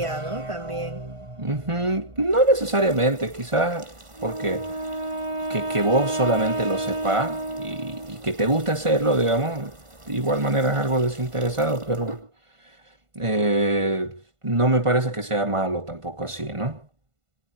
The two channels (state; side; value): late; left; 1.5 ms